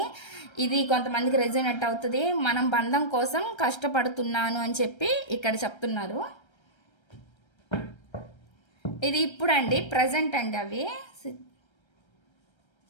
ఇది కొంతమందికి రెజోనేట్ అవుతుంది. మనం బంధం కోసం కష్టపడుతున్నాను అని చెప్పి ఇక్కడ చెప్తున్నారు. ఇది ఇప్పుడు అండి, ప్రజెంట్ అండి అవి.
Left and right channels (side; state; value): right; late; 1.3 ms